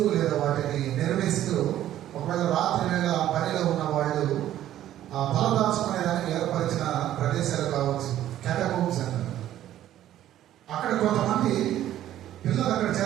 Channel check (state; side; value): quieter; left; 12.4 dB